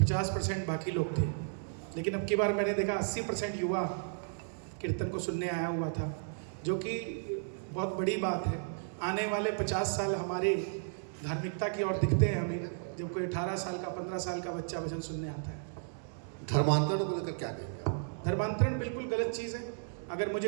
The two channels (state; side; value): silent; left; digital silence